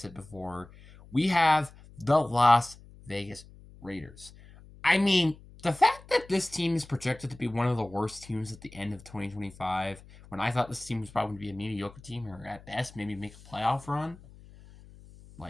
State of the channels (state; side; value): noise; left; hum, 21 dB below the sound